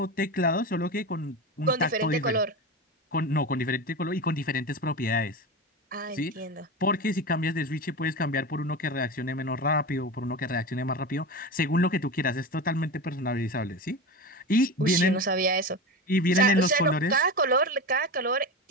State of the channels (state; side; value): normal; both; correlation 0.23